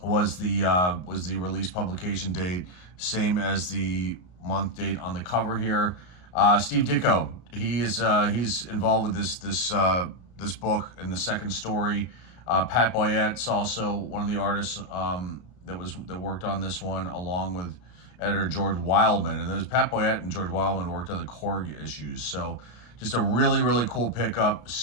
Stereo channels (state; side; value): late; right; 33 ms